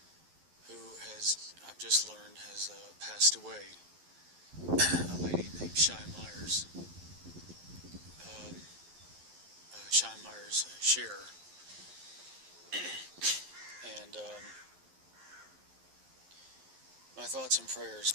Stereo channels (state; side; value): late; left; 11 ms